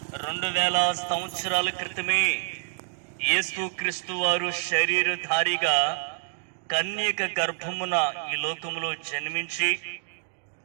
2000 సంవత్సరాల క్రితమే యేసుక్రీస్తు వారు శరీరధారిగా కన్యక గర్భమున ఈ లోకములో జన్మించి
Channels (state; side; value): silent; left; digital silence